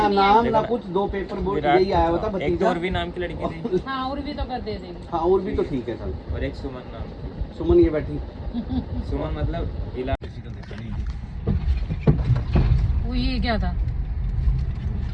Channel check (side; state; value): both; identical; correlation 1.00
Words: नहीं नाम आई। ना कुछ, 2 पेपर बोर्ड विराट यही आया था। होता एक तो भतीजा। और भी नाम की लड़की थी, हाँ, और भी तो कर दे देगी। हाँ और भी तो ठीक है सर। और एक सुमन नाम की। सुमन ये बैठी, सुमन मतलब इलाज वो ये क्या था?